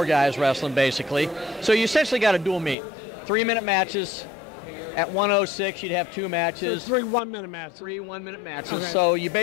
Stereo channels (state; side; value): drops out; right; at 2.8 s